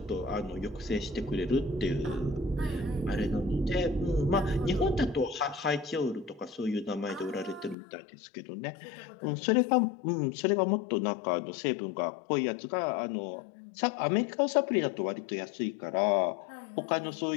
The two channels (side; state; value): right; drops out; at 7.8 s